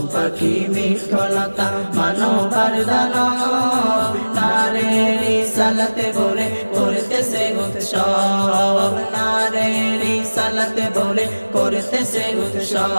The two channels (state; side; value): inverted; both; correlation -1.00